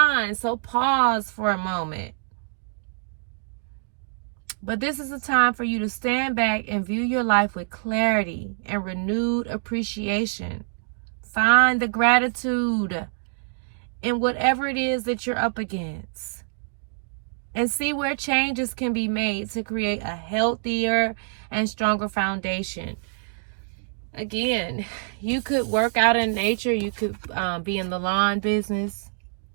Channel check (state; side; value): silent; left; digital silence